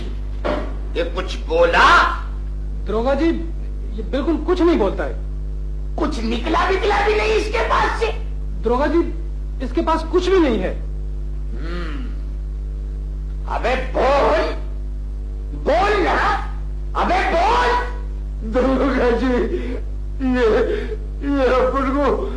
ये कुछ बोला? दरोगा जी ये बिल्कुल कुछ नहीं बोलता है। कुछ निकला विकला भी नहीं इसके पास से? दरोगा जी इसके पास कुछ भी नहीं है। अबे बोल, बोल ना, अबे बोल। दरोगा जी ये अपन को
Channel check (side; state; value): both; identical; correlation 1.00